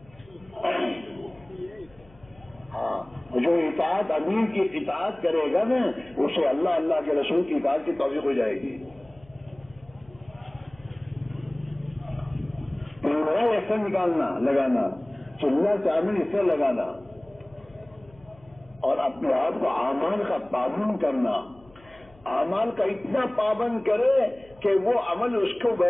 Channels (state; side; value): noise; left; hum, 27 dB below the sound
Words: ہاں جو اطاعت امیر کی اطاعت کرے گا نا اسے اللہ کے رسول کی اطاعت کی توفیق ہو جائے گی. ایسا نکالنا لگانا، چلنا چاول اس سے لگانا، اور اپنے آپ کو اعمال کا پابند کرنا. اعمال کا اتنا پابند کرے کہ وہ عمل اس کو